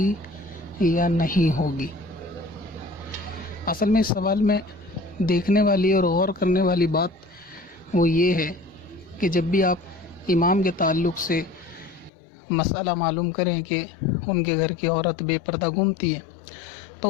یا نہیں ہوگی؟ اصل میں اس سوال میں دیکھنے والی اور غور کرنے والی بات وہ یہ ہے کہ جب بھی آپ امام کے تعلق سے مسئلہ معلوم کریں کہ ان کے گھر کی عورت بے پردہ گھومتی ہے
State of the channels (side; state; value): right; drops out; at 12.1 s